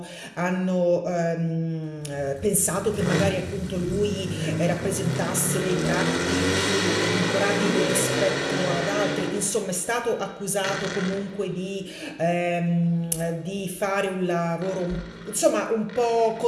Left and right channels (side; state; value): both; identical; correlation 1.00